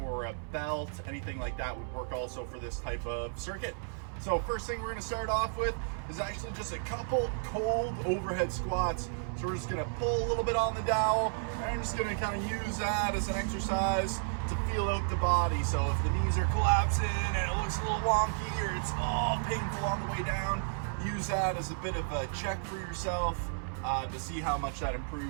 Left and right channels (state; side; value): silent; left; 56 dB below the other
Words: a belt, anything like that would work also for this type of circuit. So first thing we're going to start off with is actually just a couple cold overhead squats. So we're just going to pull a little bit on the dowel and I'm just going to kind of use that as an exercise to feel out the body. So if the knees are collapsing and it looks a little wonky or it's all painful on the way down, use that as a bit of a check for yourself to see how much that